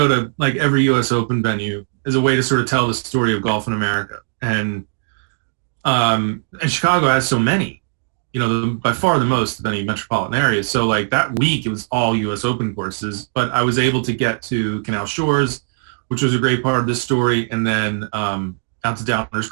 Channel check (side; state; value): left; silent; digital silence